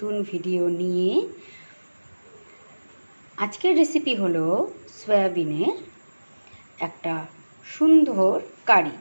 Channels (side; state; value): both; inverted; correlation -1.00